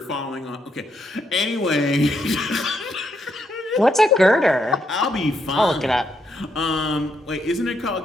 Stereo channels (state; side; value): normal; both; correlation 0.78